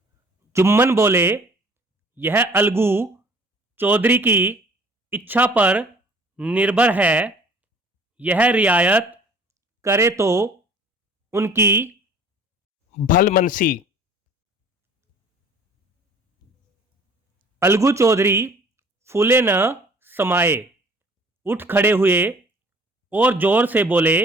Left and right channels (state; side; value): normal; both; correlation 0.52